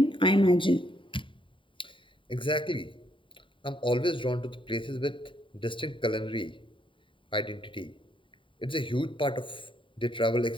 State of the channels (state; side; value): late; right; 0.25 ms